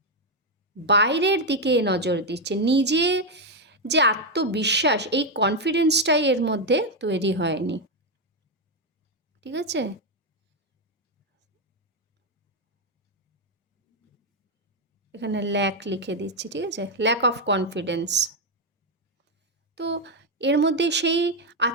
বাইরের দিকে নজর দিচ্ছে, নিজে যে আত্মবিশ্বাস, এই কনফিডেন্সটাই এর মধ্যে তৈরি হয়নি, ঠিক আছে? এখানে ল্যাক লিখে দিচ্ছি, ঠিক আছে, ল্যাক অফ কনফিডেন্স। তো এর মধ্যে সেই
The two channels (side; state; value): both; normal; correlation 0.04